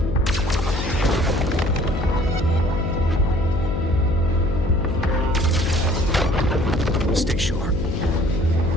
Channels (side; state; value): left; noise; hum, 4 dB below the sound